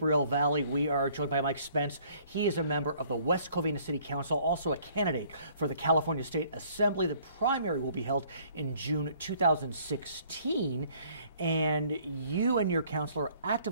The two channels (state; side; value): inverted; both; correlation -0.59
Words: Valley. We are joined by Mike Spence. He is a member of the West Covina City Council, also a candidate for the California State Assembly. The primary will be held in June 2016. And you and your council are